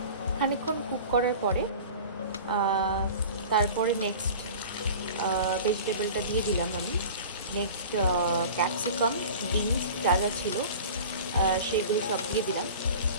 খানিকক্ষণ কুক করার পরে তারপরে নেক্সট ভেজিটেবলটা দিয়ে দিলাম আমি। নেক্সট ক্যাপসিকাম বিনস যা যা ছিল সেগুলো সব দিয়ে দিলাম।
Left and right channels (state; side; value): inverted; both; correlation -0.39